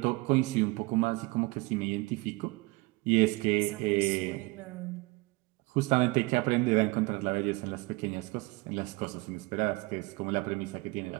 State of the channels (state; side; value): quieter; left; 23.9 dB